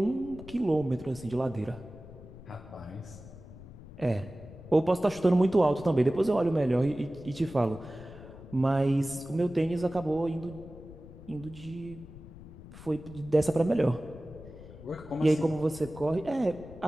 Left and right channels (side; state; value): left; noise; rumble, 17 dB below the sound